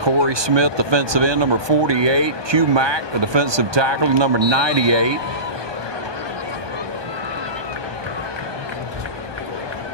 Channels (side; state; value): left; late; 1.2 ms